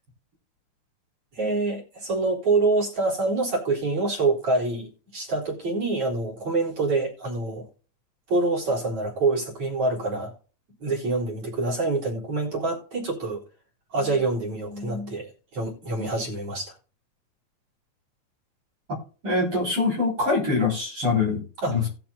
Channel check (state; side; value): late; left; 9.0 ms